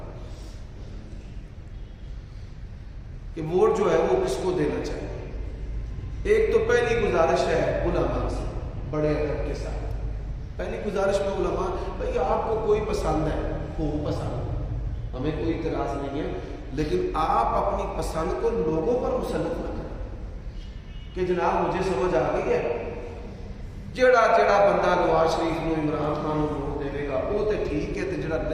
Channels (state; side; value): identical; both; correlation 1.00